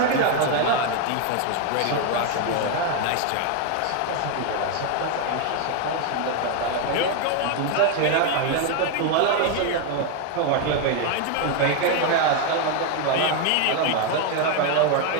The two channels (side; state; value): both; different; correlation 0.01